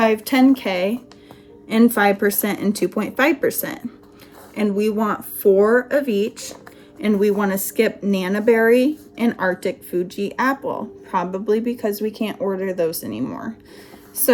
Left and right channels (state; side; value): identical; both; correlation 1.00